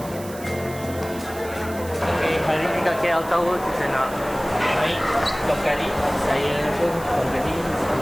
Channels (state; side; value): noise; right; hiss, 16 dB below the sound